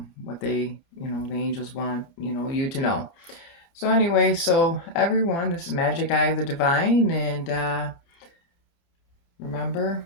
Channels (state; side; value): late; right; 30 ms